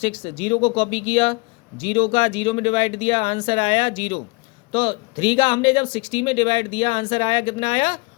0 को कॉपी किया, 0 का 0 में डिवाइड दिया, आंसर आया 0। तो 3 का हमने जब 60 में डिवाइड दिया, आंसर आया कितना आया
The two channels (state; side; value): quieter; right; 27.3 dB